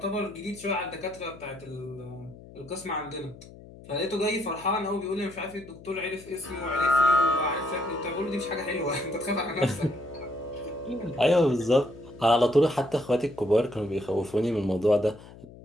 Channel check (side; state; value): left; noise; hum, 19 dB below the sound